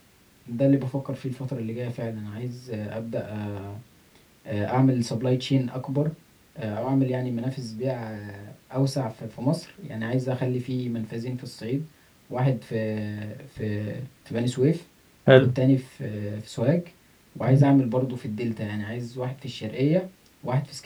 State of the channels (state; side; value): identical; both; correlation 1.00